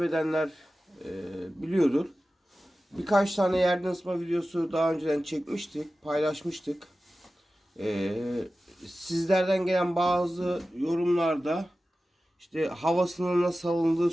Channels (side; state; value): both; normal; correlation 0.95